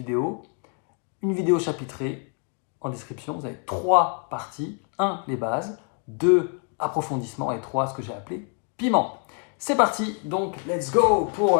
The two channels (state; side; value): quieter; right; 39.8 dB